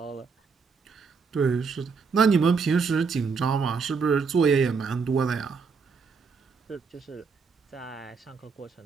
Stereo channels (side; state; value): left; quieter; 5.2 dB